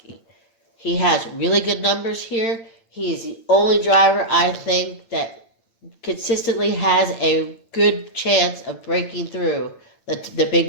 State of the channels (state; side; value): late; right; 8.9 ms